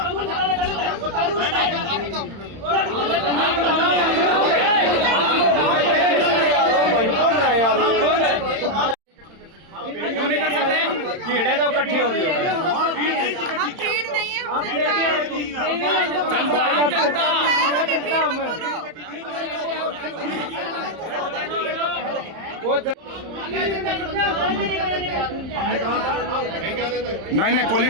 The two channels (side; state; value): left; late; 31 ms